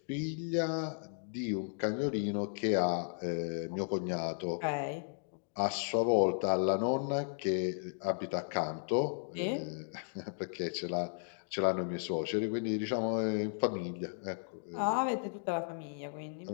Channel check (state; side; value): silent; right; digital silence